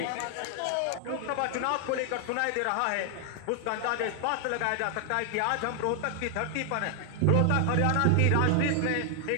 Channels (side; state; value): both; different; correlation 0.00